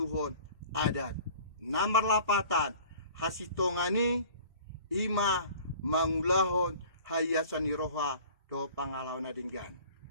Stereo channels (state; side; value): inverted; both; correlation -0.46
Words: adat namar lapatan hasitongani ima mangulahon hayasani roha do pangalaw na dinggan